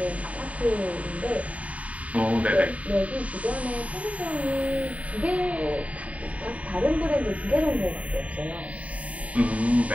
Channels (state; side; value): late; left; 0.067 ms